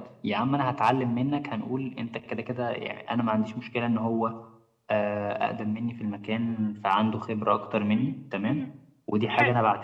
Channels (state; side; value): identical; both; correlation 1.00